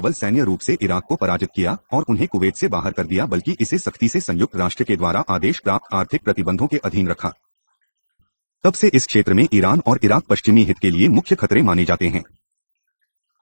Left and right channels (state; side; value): inverted; both; correlation -1.00